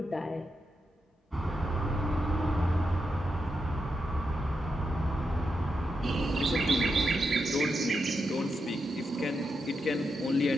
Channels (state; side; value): normal; both; correlation 0.85